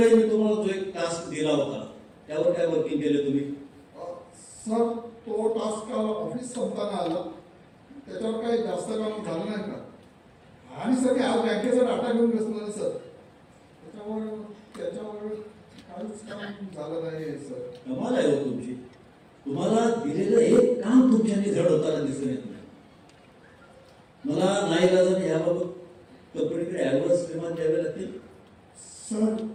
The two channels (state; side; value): identical; both; correlation 1.00